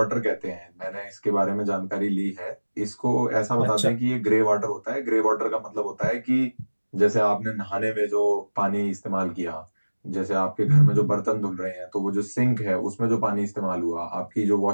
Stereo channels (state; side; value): inverted; both; correlation -1.00